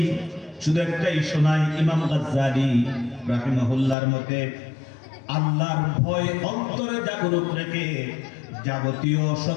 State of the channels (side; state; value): right; drops out; at 4.0 s